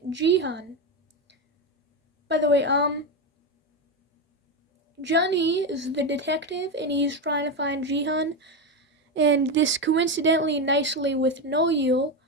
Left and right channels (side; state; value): both; normal; correlation 0.13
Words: Jihan. By the way, Junhee is the detective and he's trying to find Jihan, and this coincidentally nicely with No-Yul